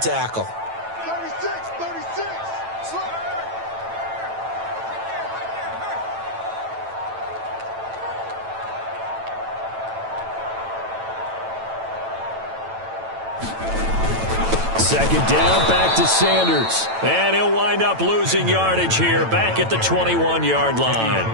36. Second down, back to Sanders. And he'll wind up losing yardage here, back at the 21-yard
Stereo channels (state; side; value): late; left; 9.0 ms